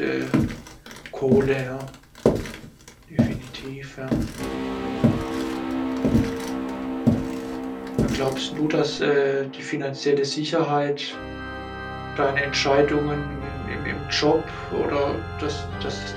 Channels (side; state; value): both; identical; correlation 1.00